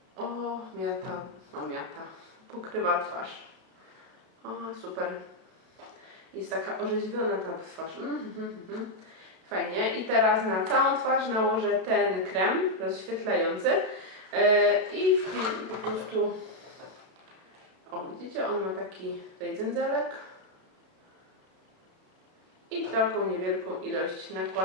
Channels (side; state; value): left; late; 32 ms